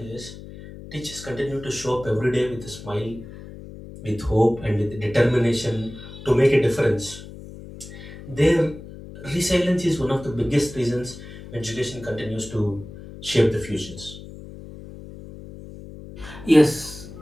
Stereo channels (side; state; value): left; noise; hum, 14 dB below the sound